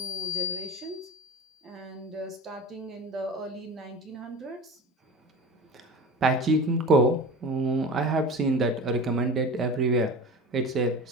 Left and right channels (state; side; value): normal; both; correlation 0.32